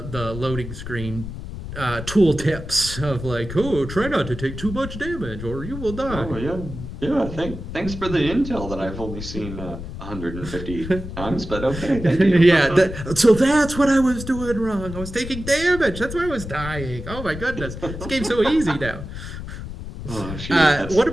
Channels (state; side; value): noise; left; rumble, 9 dB below the sound